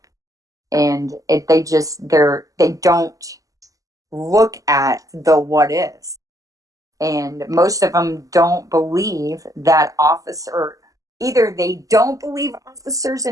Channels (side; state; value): left; late; 0.17 ms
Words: And they don't look at the what is. And most of them don't believe that either they don't believe officers